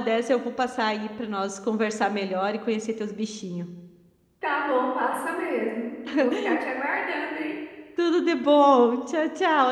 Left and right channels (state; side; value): identical; both; correlation 1.00